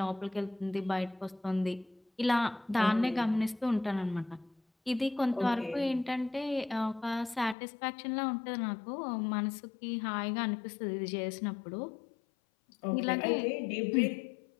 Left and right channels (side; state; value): right; drops out; at 7.6 s